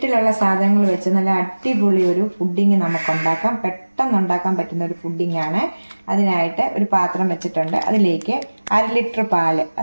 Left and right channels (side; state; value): both; inverted; correlation -1.00